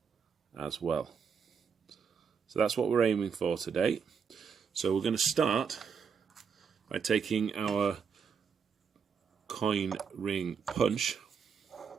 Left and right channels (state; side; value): quieter; left; 6.4 dB